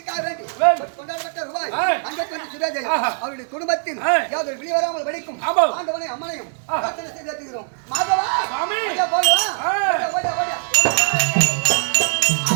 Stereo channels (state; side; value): silent; left; 63 dB below the other